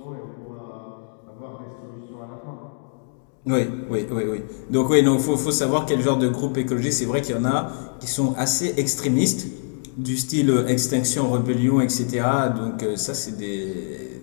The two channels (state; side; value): silent; right; 63 dB below the other